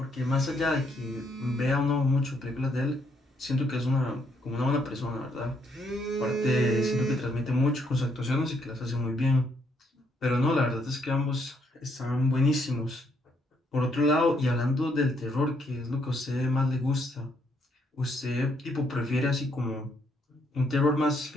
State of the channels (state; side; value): normal; both; correlation 0.72